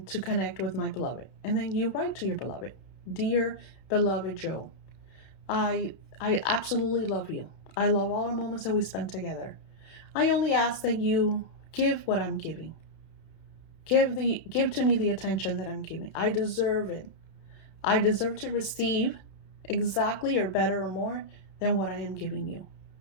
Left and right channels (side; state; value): right; late; 31 ms